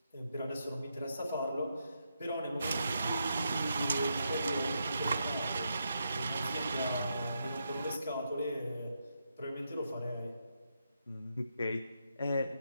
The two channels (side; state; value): both; inverted; correlation -0.82